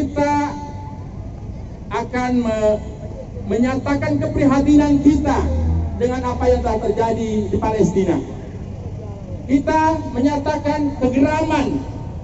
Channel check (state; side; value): identical; both; correlation 1.00